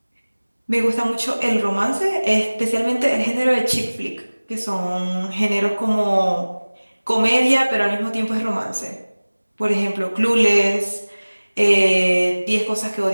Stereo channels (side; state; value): both; inverted; correlation -1.00